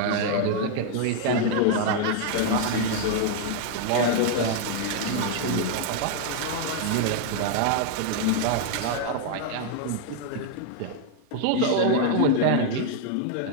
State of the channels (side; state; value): both; different; correlation 0.00